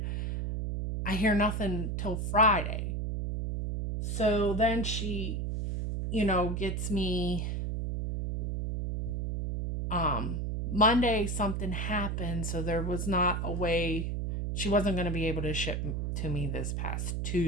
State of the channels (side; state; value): right; noise; hum, 1 dB below the sound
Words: I hear nothing till Friday. So then she, gets me Monday. Something happened, so there was not a way, she wasn't going to be able to ship to me this